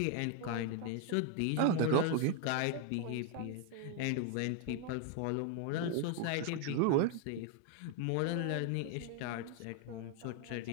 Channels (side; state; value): both; different; correlation 0.00